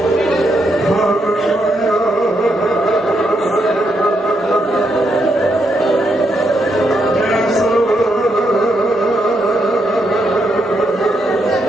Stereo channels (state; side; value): normal; both; correlation 0.79